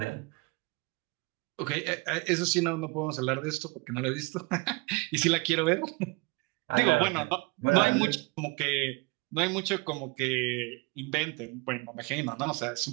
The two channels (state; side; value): quieter; left; 26.7 dB